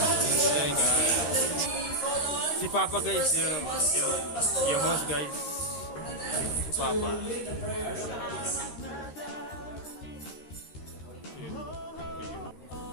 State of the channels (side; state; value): right; late; 13 ms